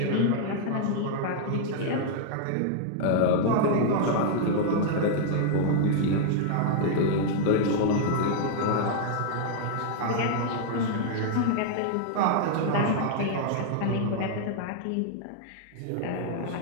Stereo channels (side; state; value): both; different; correlation 0.00